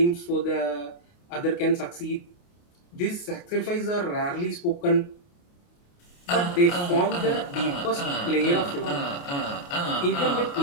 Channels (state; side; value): late; right; 28 ms